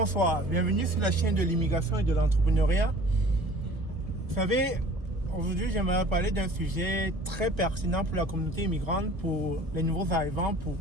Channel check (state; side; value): late; left; 1.2 ms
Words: Bienvenue sur la chaîne de l'immigration et de l'entrepreneuriat. Vous savez, aujourd'hui, j'aimerais parler d'un sujet très pertinent pour la communauté immigrante, pour les nouveaux arrivants, pour